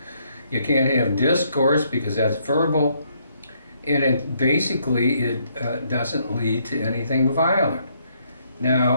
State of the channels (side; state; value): both; inverted; correlation -0.71